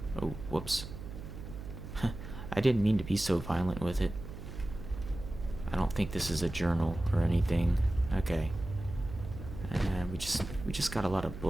oh, whoops. I didn't mean to be so violent with it. I don't think this is a journal or anything. Okay. And we just got a lot of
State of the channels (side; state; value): right; noise; hum, 10 dB below the sound